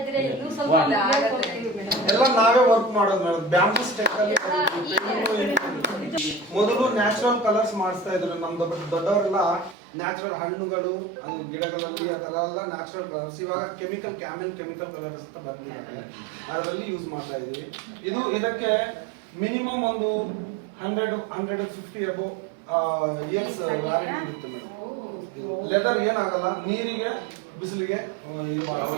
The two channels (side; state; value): left; drops out; at 9.8 s